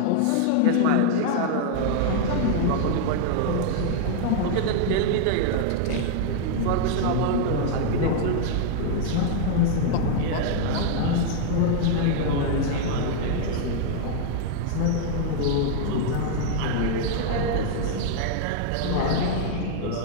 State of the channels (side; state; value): both; different; correlation 0.00